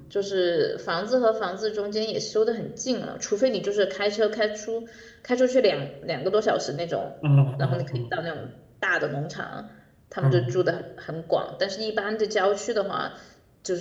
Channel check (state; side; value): identical; both; correlation 1.00